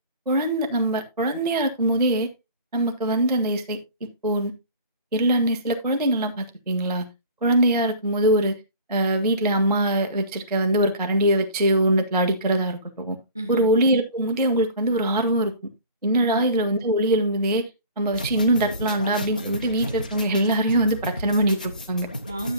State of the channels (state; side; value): inverted; both; correlation -0.44